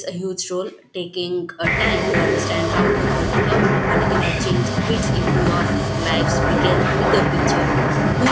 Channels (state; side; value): identical; both; correlation 1.00